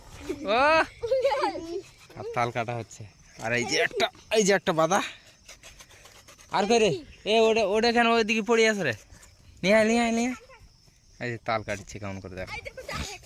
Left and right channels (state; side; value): identical; both; correlation 1.00